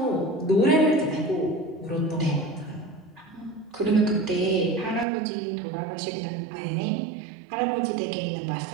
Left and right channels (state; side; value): drops out; left; at 5.1 s